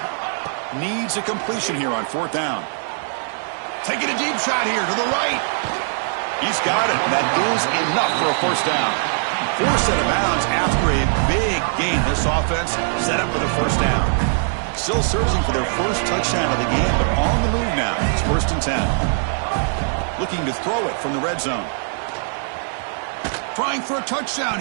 Needs a completion here on fourth down. Taking a deep shot here to the right. He's got it. That is enough for a first down. Forced out of bounds after a big gain. This offense set up for the first down. Still searching for their first touchdown of the game, but on the move now. It's first and 10. Looking to throw it from the red zone. Trying for a touchdown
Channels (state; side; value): silent; left; digital silence